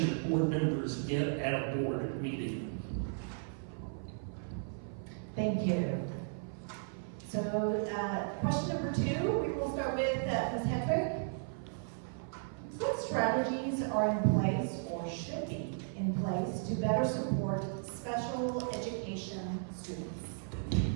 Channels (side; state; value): left; silent; 54 dB below the other